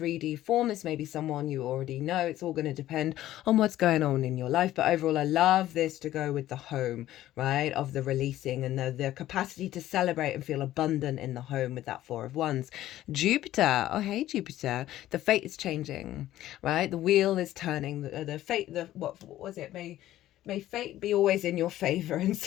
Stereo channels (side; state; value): right; quieter; 14.0 dB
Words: form. This may be someone you already know. It's all going to depend on what's going on in your life, but overall I love this to go with the home, right, of the releasing and the capacity to celebrate and feel abundant in the home with that Four of Wands. Jupiter, oh hey Jupiter, the fate is changing, right? The wheel is turning. The fate, what was it, may fate be always in your favor. And